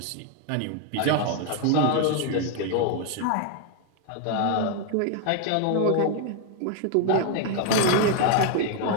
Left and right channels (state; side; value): different; both; correlation 0.00